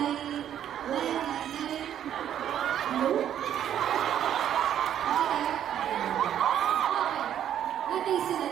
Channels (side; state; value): left; quieter; 10.3 dB